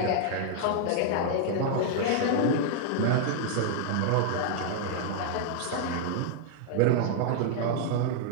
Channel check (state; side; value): different; both; correlation -0.01